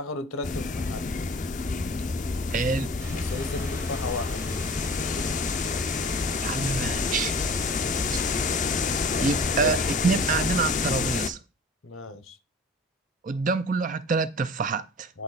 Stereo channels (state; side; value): normal; both; correlation 0.42